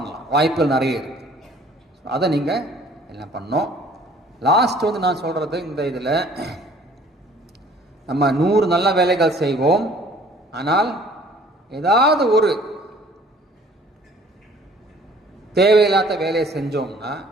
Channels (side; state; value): both; normal; correlation 0.54